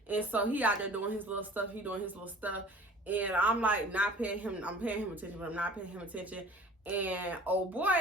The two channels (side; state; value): both; normal; correlation 0.46